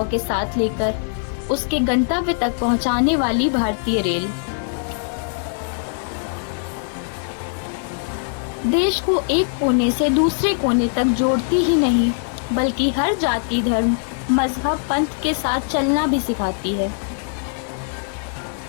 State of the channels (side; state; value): right; silent; digital silence